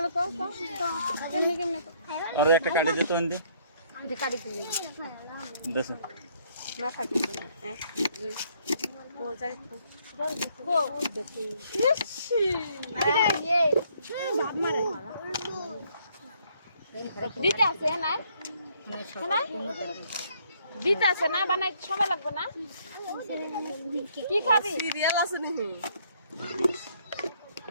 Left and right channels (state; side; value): inverted; both; correlation -0.67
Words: কত কেমনে কেমনে আর একটা কাটি দে তো এনে যে কাটি দিই দেখ না কাটি দিই এক দুই ও যাই ও দেখি ইসি এই বাপ মারে দিতে আছে না না দিতে আছে না বানাই সময় লাগবে না কি খাবি সিরিয়াল আছে নাকি